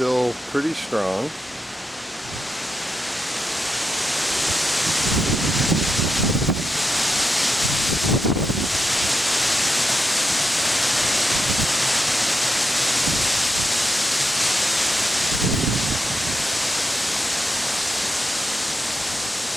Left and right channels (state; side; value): normal; both; correlation 0.85